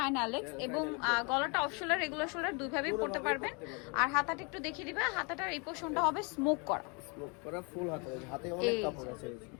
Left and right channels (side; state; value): right; quieter; 32.6 dB